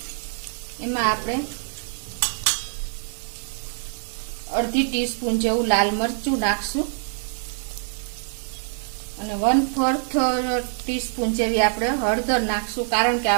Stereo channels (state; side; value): silent; left; digital silence